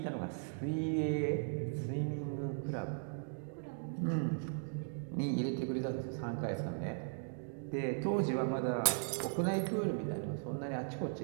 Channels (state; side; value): silent; left; digital silence